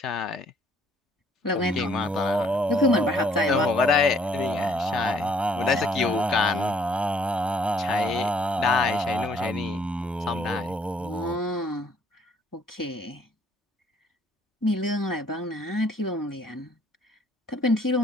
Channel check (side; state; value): both; normal; correlation 0.62